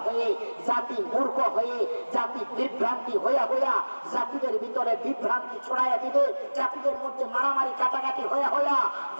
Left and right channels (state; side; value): inverted; both; correlation -1.00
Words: হয়ে, জাতি মূর্খ হয়ে, জাতি বিভ্রান্তি হইয়া হইয়া জাতিদের ভিতরে বিভ্রান্তি ছড়াইয়া দিবে, জাতিদের মধ্যে মারামারি কাটাকাটি হইয়া হইয়া